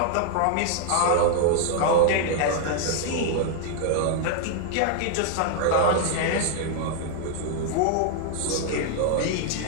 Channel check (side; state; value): both; different; correlation -0.01